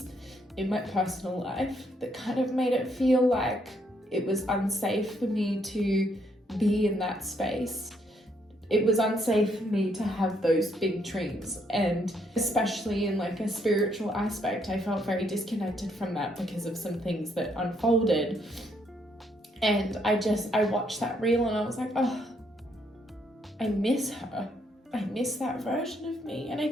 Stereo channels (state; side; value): normal; both; correlation 0.72